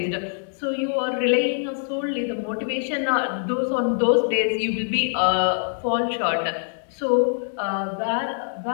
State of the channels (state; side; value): silent; right; digital silence